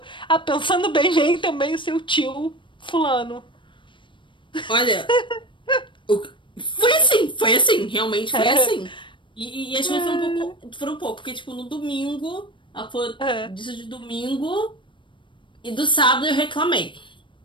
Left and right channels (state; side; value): late; right; 0.24 ms